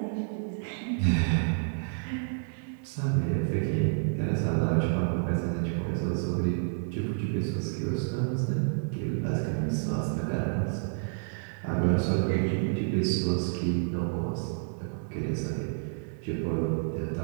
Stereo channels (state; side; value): silent; left; digital silence